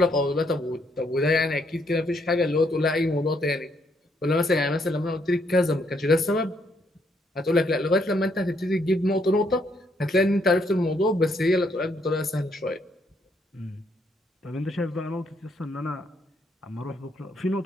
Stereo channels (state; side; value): normal; both; correlation 0.73